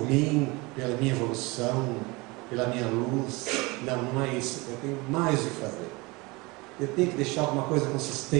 mim, pela minha evolução, pela minha luz. Não, não é isso. Eu tenho mais o que fazer. Eu tenho que deixar alguma coisa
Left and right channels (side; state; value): left; quieter; 24.8 dB